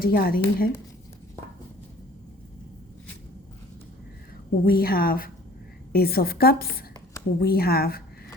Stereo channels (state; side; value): normal; both; correlation 0.50